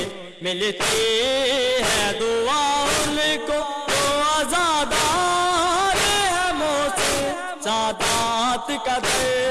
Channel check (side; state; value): both; identical; correlation 1.00